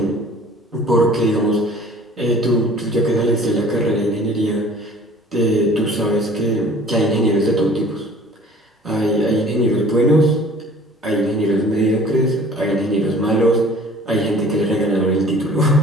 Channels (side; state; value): both; normal; correlation 0.49